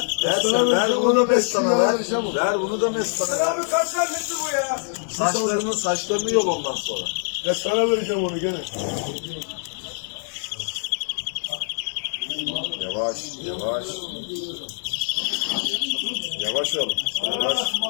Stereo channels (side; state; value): right; silent; 60 dB below the other